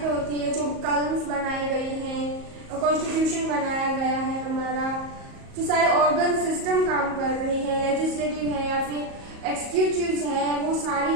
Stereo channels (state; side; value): late; left; 38 ms